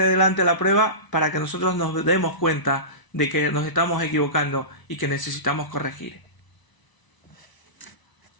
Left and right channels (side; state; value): right; late; 1.0 ms